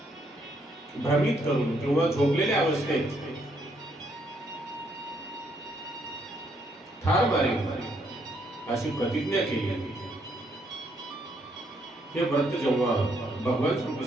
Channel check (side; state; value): both; normal; correlation 0.72